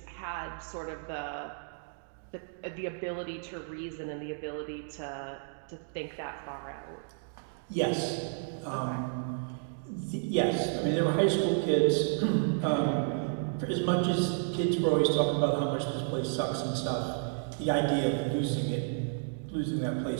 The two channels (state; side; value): silent; left; digital silence